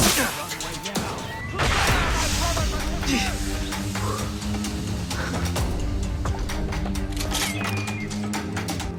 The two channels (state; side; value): identical; both; correlation 1.00